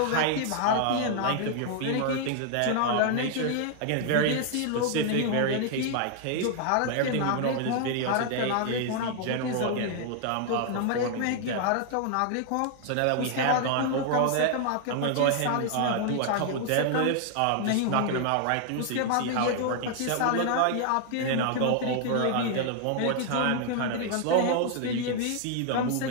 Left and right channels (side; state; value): both; different; correlation 0.00